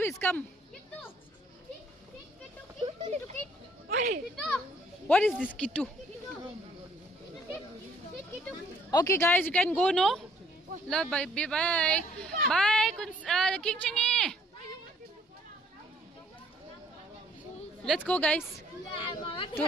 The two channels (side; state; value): both; normal; correlation 0.63